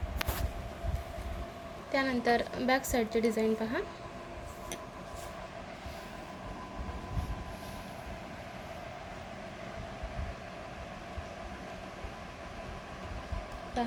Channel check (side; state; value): both; identical; correlation 1.00